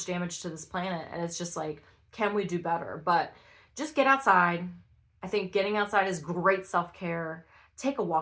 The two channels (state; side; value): identical; both; correlation 1.00